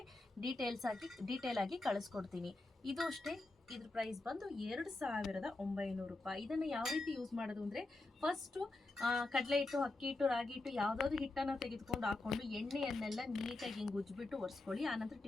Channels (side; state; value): right; quieter; 3.0 dB